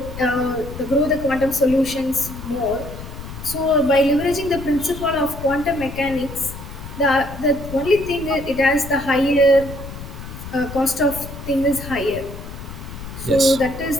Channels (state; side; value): noise; left; rumble, 11 dB below the sound